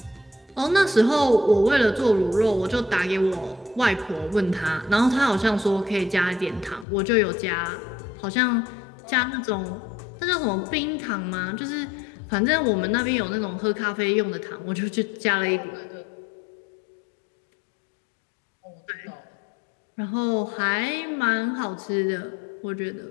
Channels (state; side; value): drops out; right; at 6.9 s